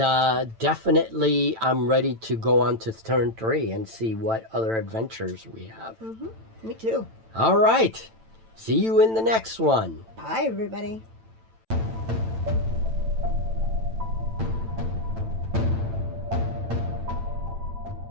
definitely I'm ready to go on to turn 3 and see what other adventures we have. Me too. All right. See you in the next one. Bye, everybody.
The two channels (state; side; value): late; left; 9.0 ms